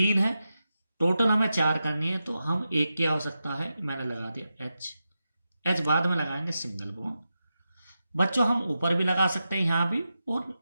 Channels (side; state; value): both; inverted; correlation -0.90